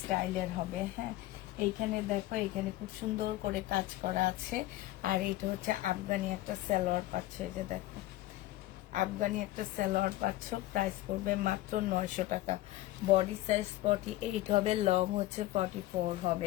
হবে, হ্যাঁ এইখানে দেখো, এখানে খুব সুন্দর করে কাজ করা আছে। আর এটা হচ্ছে আফগানি একটা সালোয়ার পাচ্ছে, এই যে দেখো আফগানি একটা সালোয়ার পাচ্ছ, প্রাইস পড়বে মাত্র 900 টাকা। বডি সাইজ 48 হবে, লং হচ্ছে 44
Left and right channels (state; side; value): quieter; right; 16.7 dB